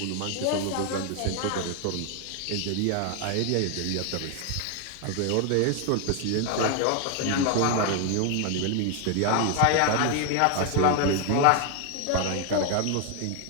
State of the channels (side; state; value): both; different; correlation 0.00